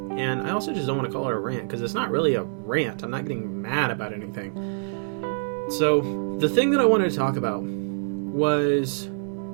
and I also just don't want to call it a rant, because it's not really a rant. I'm not getting mad about anything. So, the thing that I wanted to talk about was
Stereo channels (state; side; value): silent; left; 60 dB below the other